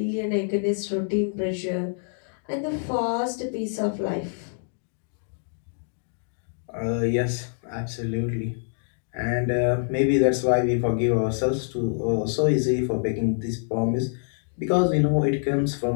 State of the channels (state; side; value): silent; right; digital silence